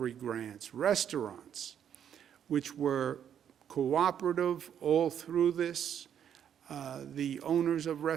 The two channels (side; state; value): left; quieter; 9.1 dB